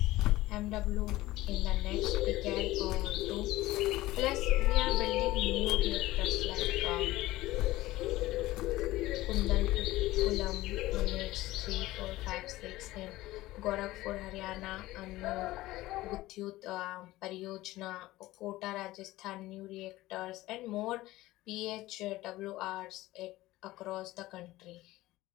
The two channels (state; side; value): quieter; right; 17.5 dB